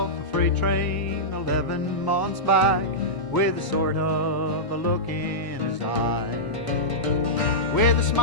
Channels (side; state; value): right; late; 1.0 ms